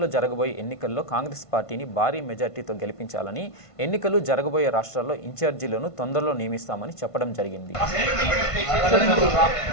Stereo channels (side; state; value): right; late; 1.5 ms